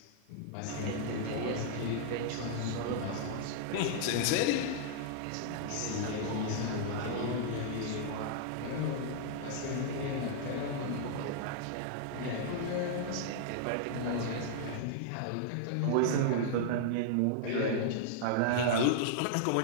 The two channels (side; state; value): both; different; correlation -0.01